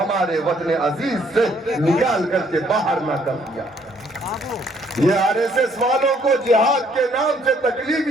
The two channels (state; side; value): normal; both; correlation 0.65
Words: وطن عزیز سے نکال کر کے باہر نہ کر دیا۔ یہ آر ایس ایس والوں کو جہاد کے نام سے تکلیف